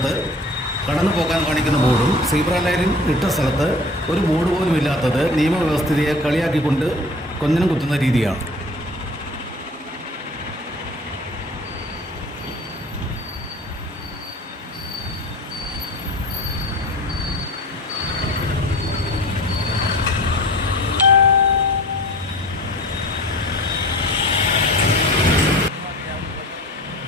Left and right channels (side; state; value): both; normal; correlation 0.42